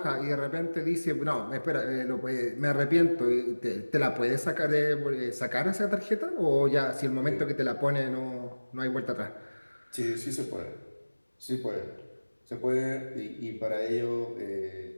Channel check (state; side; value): inverted; both; correlation -1.00